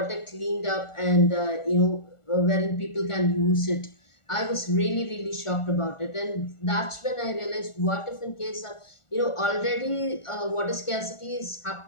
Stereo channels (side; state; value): right; late; 1.4 ms